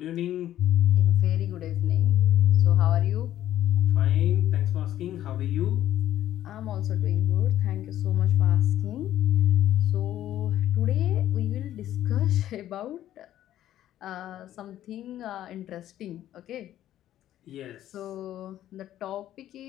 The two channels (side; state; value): right; quieter; 12.5 dB